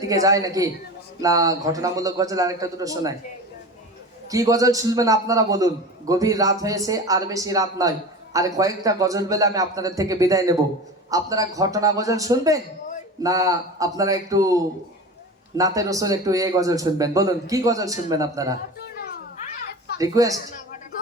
দিকে যায় নাকি না ঘটনামূলক গজল আরেকটা দুটো শোনায়? কি গজল শুনবেন আপনারা বলুন? গভীর রাত হয়েছে, আর বেশি রাত নয়, আর কয়েকটা গজল বেলে আমি আপনাদের থেকে বিদায় নেব। আপনারা ঘটনা গজল শুনবেন না আপনারা একটু নাতে রসুল একটু এই গজল শুনবেন? বলুন কি গজল শুনবেন আপনারা? রিকোয়েস্ট?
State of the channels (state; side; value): normal; both; correlation 0.31